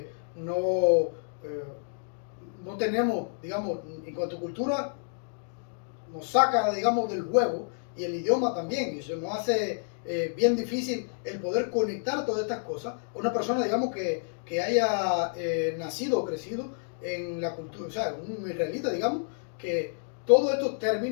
no tenemos, digamos, en cuanto a cultura, nos saca, digamos, del juego, y el idioma también, y eso nos hace bien difícil el poder conectar todas estas cosas. Una persona, digamos, que haya nacido o crecido en la cultura, o sea, un israelita, digamos, que todos estos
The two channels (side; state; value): right; silent; digital silence